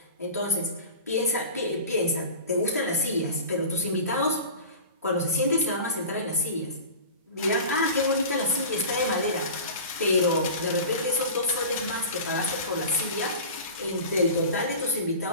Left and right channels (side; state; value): both; inverted; correlation -0.35